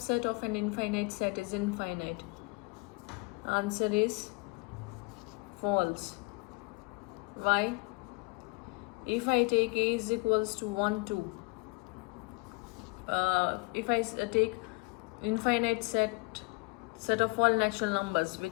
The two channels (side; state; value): right; quieter; 29.4 dB